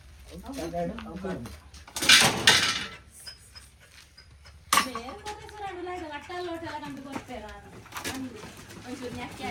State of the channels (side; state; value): both; identical; correlation 1.00